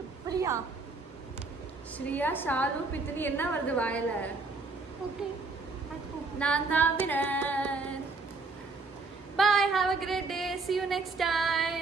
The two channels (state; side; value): quieter; left; 3.8 dB